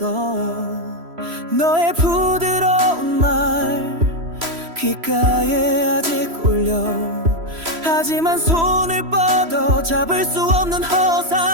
너의 부드러운 말 귓가에 아직 울려. 하지만 손을 뻗어 잡을 수 없는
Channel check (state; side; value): late; left; 3.0 ms